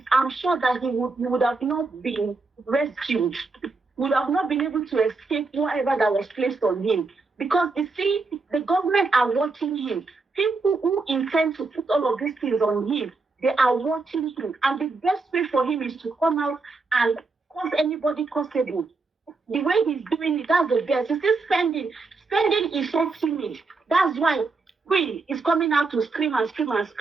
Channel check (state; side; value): quieter; left; 3.9 dB